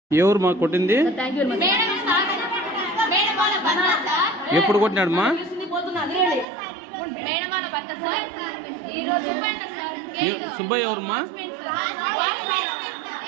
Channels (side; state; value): left; drops out; at 6.5 s